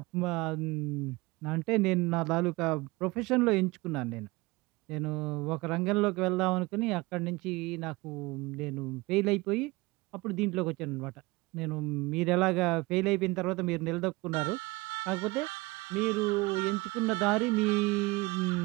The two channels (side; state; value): left; quieter; 22.9 dB